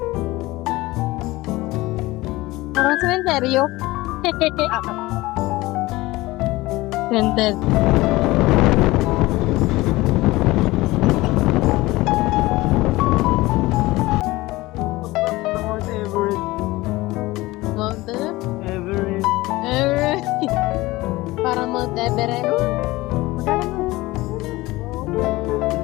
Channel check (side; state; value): right; quieter; 19.7 dB